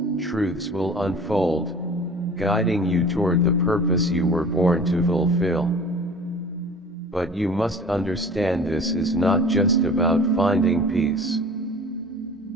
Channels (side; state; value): both; normal; correlation 0.43